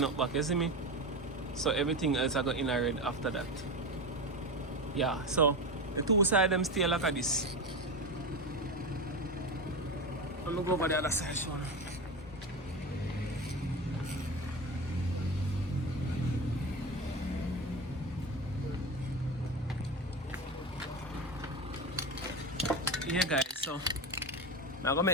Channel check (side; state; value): both; normal; correlation 0.22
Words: up back, you see me? So everything else I got in a red after that. Yeah, so the two sides them stay like this. I'm gonna go over the other side, show you. Yeah guys, so I'm gonna